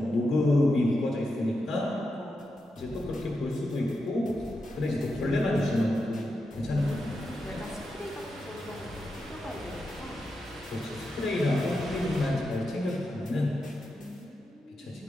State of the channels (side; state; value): both; normal; correlation 0.87